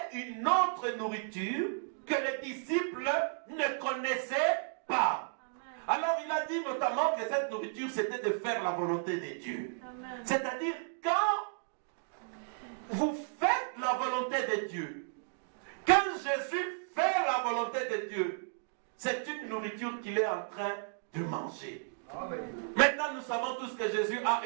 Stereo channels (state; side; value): silent; left; digital silence